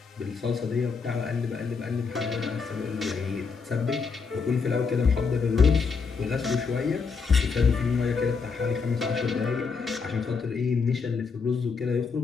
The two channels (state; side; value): quieter; right; 5.2 dB